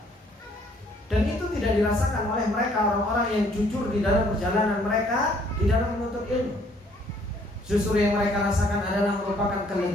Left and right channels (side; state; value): both; normal; correlation 0.63